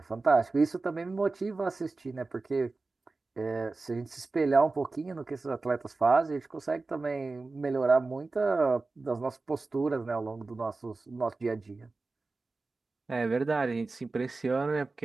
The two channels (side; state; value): left; quieter; 3.6 dB